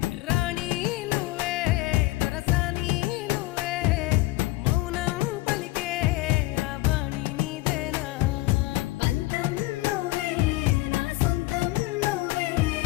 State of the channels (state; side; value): quieter; right; 19.0 dB